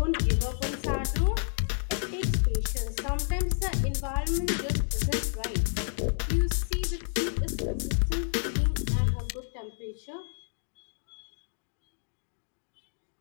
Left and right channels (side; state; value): right; silent; digital silence